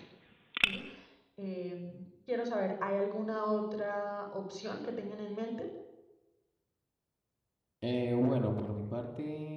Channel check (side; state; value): both; identical; correlation 1.00